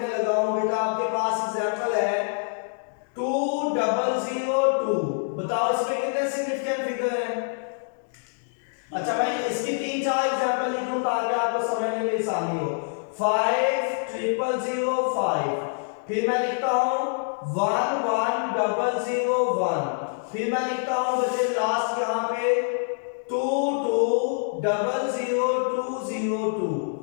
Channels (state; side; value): silent; right; digital silence